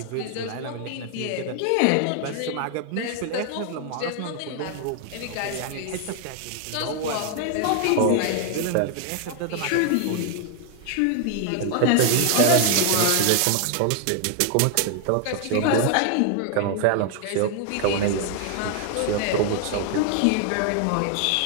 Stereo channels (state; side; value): different; both; correlation 0.00